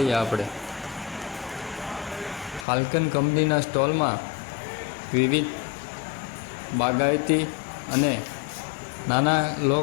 આપણે. ફાલ્કન કંપનીના સ્ટોલમાં વિવિધ બાગાયતી અને નાના લો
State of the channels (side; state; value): right; drops out; at 2.7 s